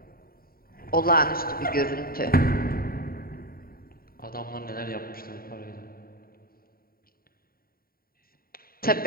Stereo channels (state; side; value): late; right; 0.43 ms